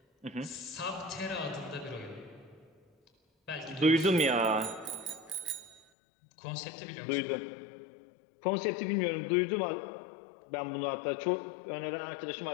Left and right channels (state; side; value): drops out; right; at 5.9 s